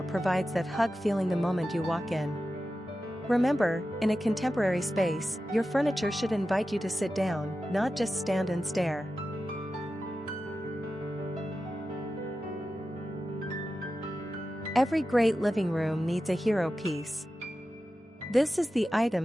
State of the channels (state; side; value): normal; both; correlation 0.92